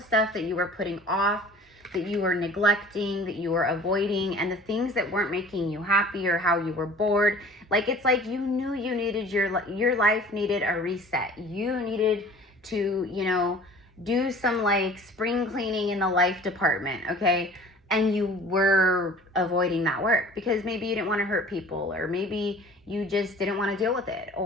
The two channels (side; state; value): both; normal; correlation 0.46